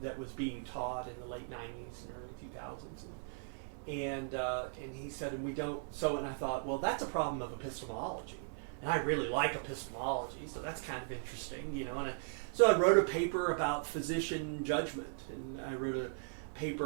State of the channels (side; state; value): left; silent; 53 dB below the other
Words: was being taught in the late 90s and early 2000s. And he said, and we don't, and I thought, well, that's a problem of epistemology. And I really like epistemology, so that's kind of interesting, And so I wrote a paper about physician judgment, and I wrote a